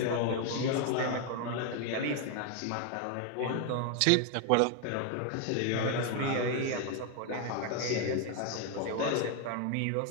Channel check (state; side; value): different; both; correlation 0.01